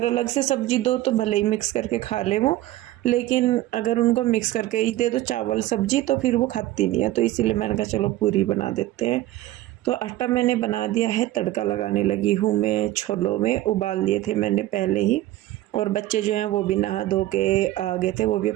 अलग से सब्जी दो तो भले ही मिक्स करके खा ले वो, लेकिन अगर उनको मिक्स करके ही दे दो चावल सब्जी तो फिर वो खाती नहीं है। तो इसीलिए मैंने कहा चलो पूरी बना देते हैं। तो आटा मैंने बना दिया है, तड़का लगाने लगी हूँ मैं। छोलों में उबाल लिए थे मैंने पहले ही, और बच्चे जो हैं वो भी नहा धो के आ गए थे, वो भी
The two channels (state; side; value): quieter; left; 15.7 dB